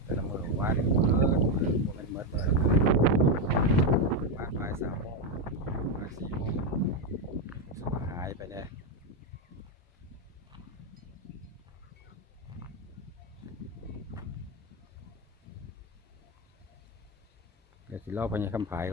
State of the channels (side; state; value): both; normal; correlation 0.07